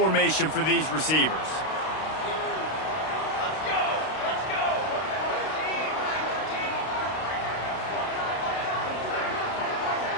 for these receivers.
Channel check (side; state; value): right; late; 32 ms